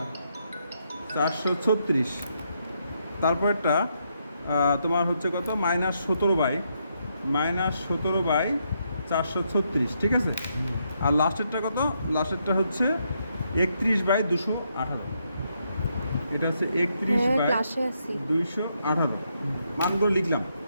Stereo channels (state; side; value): inverted; both; correlation -0.78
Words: তারপরটা তোমার হচ্ছে কত -17/436 ঠিক আছে আর লাস্টেরটা কত লাস্টেরটা হচ্ছে 31/218 এটা হচ্ছে হ্যাঁ ক্লাসে আছি 31/218 মানগুলো লিখলাম